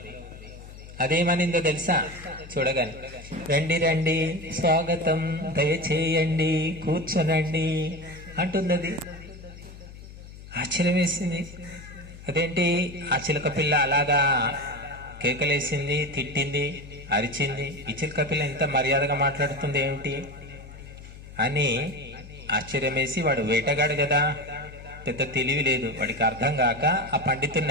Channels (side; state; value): left; noise; hum, 16 dB below the sound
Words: అదేమనిందో తెలుసా? చూడగానే, రండి రండి, స్వాగతం, దయచేయండి, కూర్చోనండి అంటుంది. అది ఆశ్చర్యం వేసింది. అదేంటి ఆ చిలక పిల్ల అలాగా కేకలేసింది, తిట్టింది, అరిచింది, ఈ చిలక పిల్ల ఇంత మర్యాదగా మాట్లాడుతుంది ఏమిటి అని ఆశ్చర్యం వేసి, వాడు వేటగాడు కదా, పెద్ద తెలివి లేదు, వాడికి అర్థం కాక ఆ